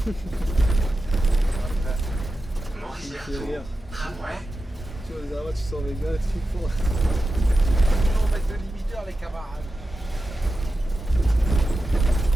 Maurice Il me fait Berthaud, rire. tramway. Tu vois, les arabes, tu sors avec gars, tu fais fort. On va mettre le limiteur, les camarades.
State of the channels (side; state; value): both; normal; correlation 0.91